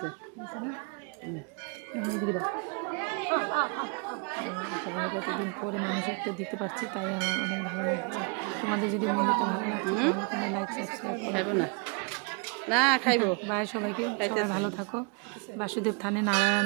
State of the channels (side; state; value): left; quieter; 33.5 dB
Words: সবাইকে এতদিন পরে মানুষের তো দিতে পারছি, তাই আমার অনেক ভালো লাগছে। তোমাদের যদি মন্দিরটা ভালো লাগছে তাহলে তোমরা লাইক সাবস্ক্রাইব খাইবো না না খাইবো। বাই সবাইকে, সবাই ভালো থাকো। বাসুদেব থানে